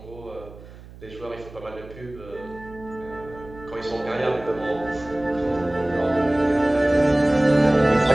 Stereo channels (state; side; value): noise; right; hum, 18 dB below the sound